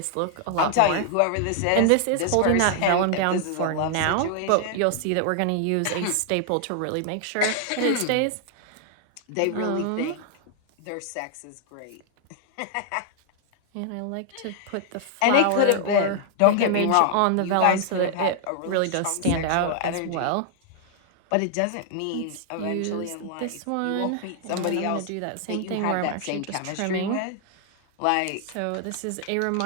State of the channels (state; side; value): different; both; correlation 0.00